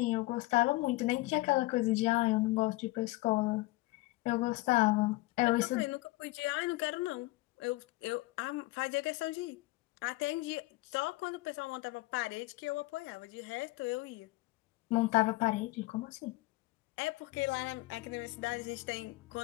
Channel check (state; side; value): quieter; right; 20.6 dB